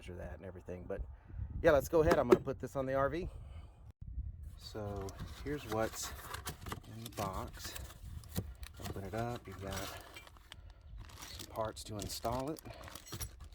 that and everything. But yeah, let's go ahead. I'm going to put this on the RV. So here's what's in the box. Open it up. You've got some parts to install it.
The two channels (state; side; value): identical; both; correlation 1.00